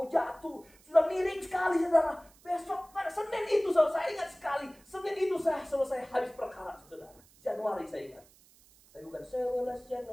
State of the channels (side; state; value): right; noise; hiss, 27 dB below the sound